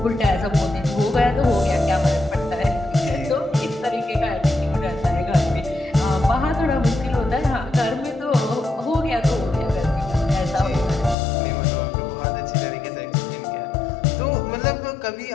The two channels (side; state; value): right; drops out; at 11.2 s